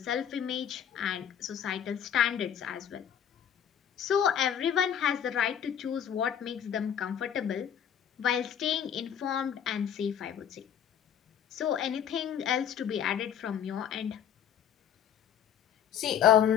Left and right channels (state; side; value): quieter; right; 9.0 dB